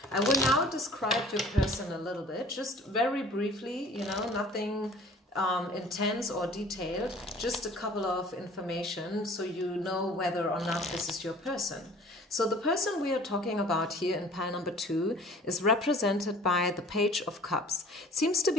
I will now describe your person a little bit, just very briefly, you know, nothing intense or detailed, just a couple of information so you know whether or not this is your person. So the person we are talking about here in pile number 2 is represented by the Page of Cups. Seems to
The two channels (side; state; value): both; normal; correlation 0.49